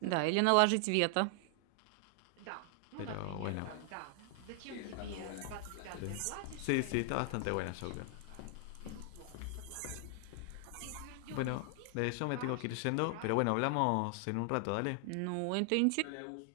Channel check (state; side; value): different; both; correlation 0.00